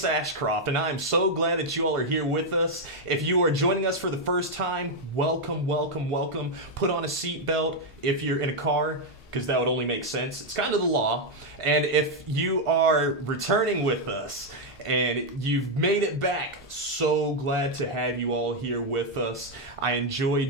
Ashcroft, and I am so glad that you all are here with us. If you are joining us for the first time, welcome, welcome, welcome. Put on a seatbelt if you're in a car, because that would only make sense. It's kind of the law. And if you are returning with us, and you've made it back, so glad to have you all here with us. I enjoy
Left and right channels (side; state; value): both; normal; correlation 0.01